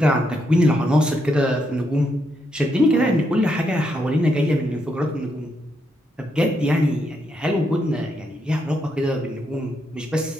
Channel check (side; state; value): both; normal; correlation 0.79